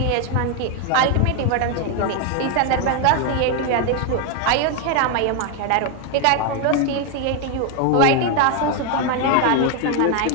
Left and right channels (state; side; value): different; both; correlation 0.01